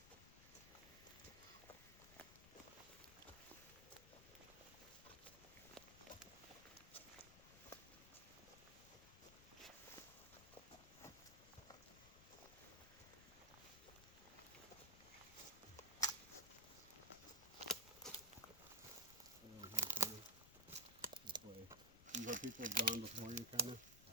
This way. See where people have gone before you, kind of.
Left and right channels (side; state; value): left; noise; rumble, 17 dB below the sound